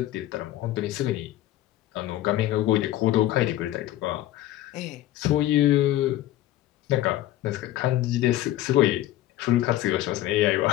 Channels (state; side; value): quieter; right; 14.3 dB